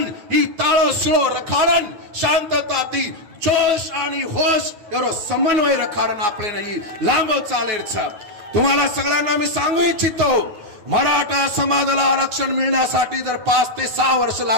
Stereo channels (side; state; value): left; late; 9.2 ms